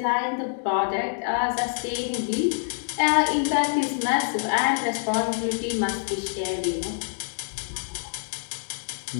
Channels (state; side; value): silent; right; digital silence